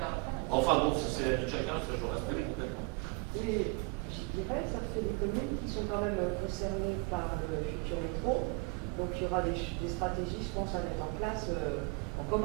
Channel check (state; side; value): quieter; left; 28.8 dB